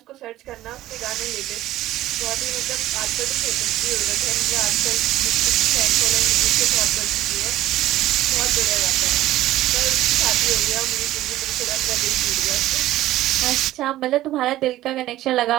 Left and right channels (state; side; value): quieter; left; 14.9 dB